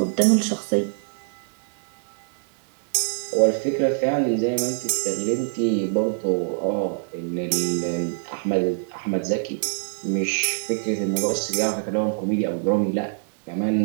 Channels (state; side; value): silent; left; digital silence